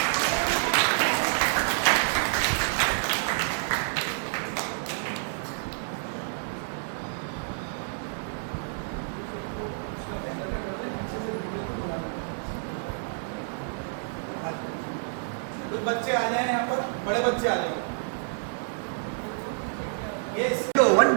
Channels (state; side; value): silent; left; digital silence